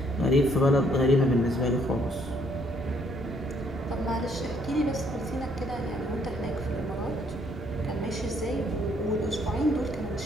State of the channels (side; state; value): both; normal; correlation 0.67